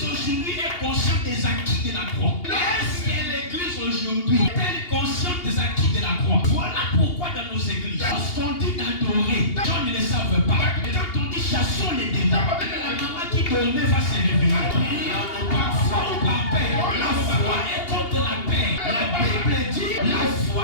aujourd'hui est consciente des acquis de la croix? Est-ce que l'église aujourd'hui est consciente des acquis de la croix? Voilà pourquoi dans nos églises, lorsqu'on dit d'adorer, les gens ne le savent pas. Quand on dit chassons les démons, la maman qui dormait va se réveiller. Prions par foi ou par paix. La foi est contre la paix. La Bible dit la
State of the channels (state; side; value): late; right; 2.8 ms